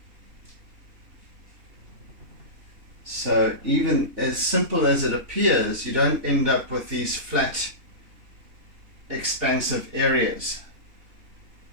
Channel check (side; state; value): left; late; 3.3 ms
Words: So even as simple as it appears, you don't end up with these flat, expansive areas.